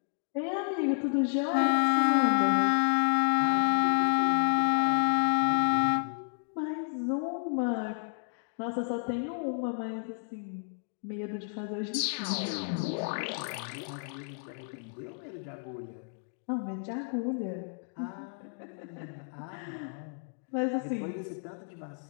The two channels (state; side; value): silent; right; 57 dB below the other